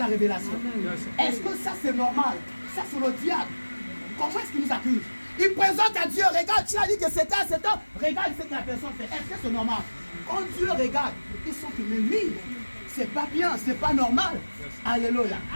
révélation. Est-ce que ça c'est normal? Ça c'est le diable. Comment est-ce qu'il nous accuse? Il présente à Dieu, regarde, tu as dit que c'était un, regarde ce que la personne fait. Est-ce que c'est normal? Quand Dieu regarde, ils sont que mais oui, c'est pas bien, c'est pas normal. Alléluia.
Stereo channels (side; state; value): both; inverted; correlation -1.00